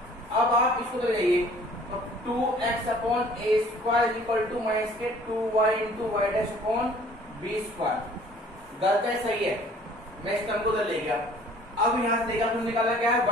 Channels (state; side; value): normal; both; correlation 0.53